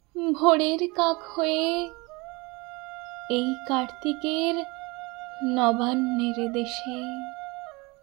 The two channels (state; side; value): quieter; left; 25.6 dB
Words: ভোরের কাক হয়ে এই কার্তিকের নবান্নের দেশে।